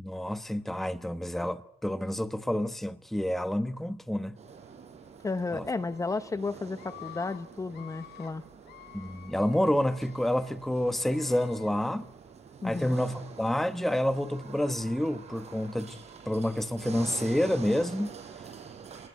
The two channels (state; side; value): normal; both; correlation 0.95